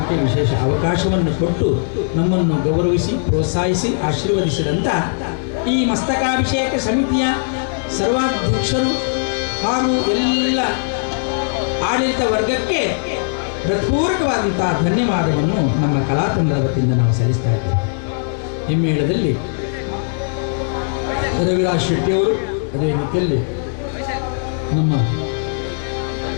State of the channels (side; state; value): right; silent; 67 dB below the other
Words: ವಿಶೇಷ ಅವಕಾಶವನ್ನು ಕೊಟ್ಟು ನಮ್ಮನ್ನು ಗೌರವಿಸಿ ಪ್ರೋತ್ಸಾಹಿಸಿ ಆಶೀರ್ವದಿಸಿದಂಥ ಈ ಮಸ್ತಕಾಭಿಷೇಕ ಸಮಿತಿಯ ಸರ್ವಾಧ್ಯಕ್ಷರು ಹಾಗೂ ಎಲ್ಲ ಆಡಳಿತ ವರ್ಗಕ್ಕೆ ಹೃತ್ಪೂರ್ವಕವಾದಂಥ ಧನ್ಯವಾದವನ್ನು ನಮ್ಮ ಕಲಾತಂಡದ ವತಿಯಿಂದ ನಾವು ಸಲ್ಲಿಸ್ತಾ ಇದ್ದೇವೆ. ಹಿಮ್ಮೇಳದಲ್ಲಿ ರವಿರಾಜ್ ಶೆಟ್ಟಿಯವರು, ಅದೇ ರೀತಿಯಲ್ಲಿ ನಮ್ಮ